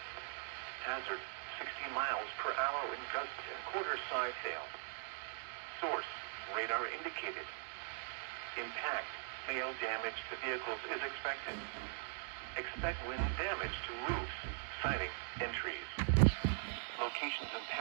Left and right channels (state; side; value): silent; left; digital silence